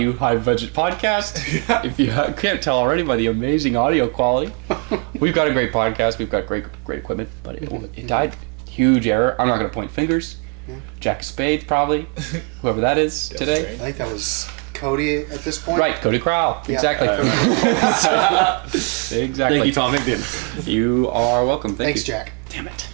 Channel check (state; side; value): quieter; left; 37.8 dB